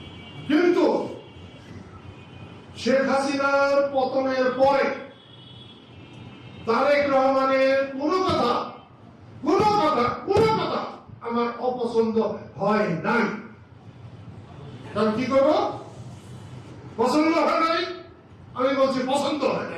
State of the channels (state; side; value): identical; both; correlation 1.00